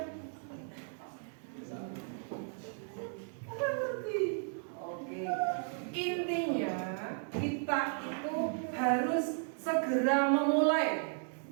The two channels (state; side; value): silent; left; 54 dB below the other